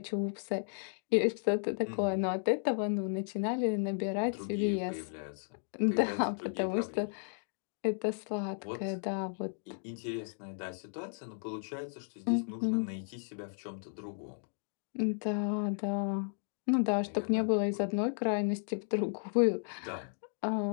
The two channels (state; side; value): silent; right; digital silence